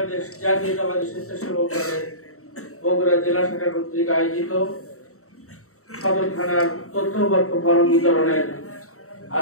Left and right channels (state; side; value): late; right; 0.64 ms